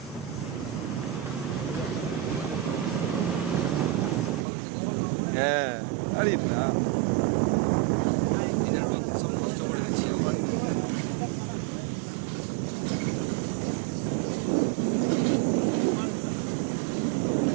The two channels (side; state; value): left; drops out; at 4.5 s